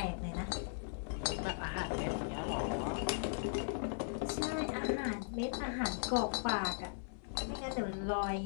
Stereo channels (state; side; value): silent; right; 52 dB below the other